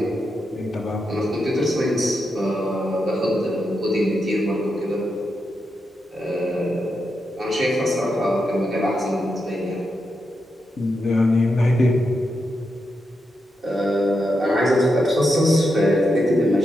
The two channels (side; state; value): both; normal; correlation 0.85